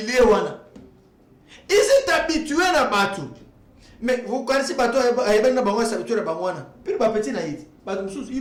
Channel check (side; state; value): both; identical; correlation 1.00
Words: Ils sont habitués à battre. Mais vous connaissez pas toi, ils sont habitués à battre. Puis les petits naïfs,